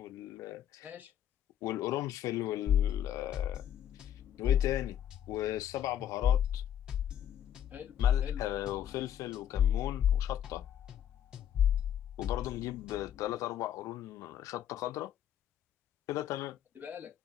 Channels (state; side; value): quieter; right; 10.5 dB